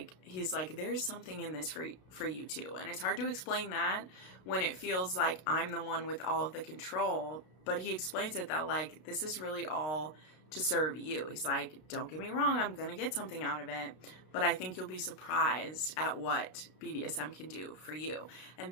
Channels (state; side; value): late; right; 32 ms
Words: he's like, there's something in this for you too. And it's hard to explain that when it feels like I'm the one with all of the control. But he explains it that like, this is really all to serve you. He's like, don't get me wrong, I'm going to get something out of it, but I think you'll be surprised at what BDSM can do for you. And